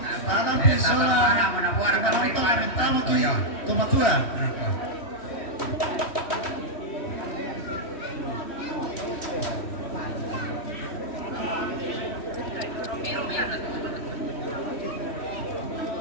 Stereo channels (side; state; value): right; late; 3.1 ms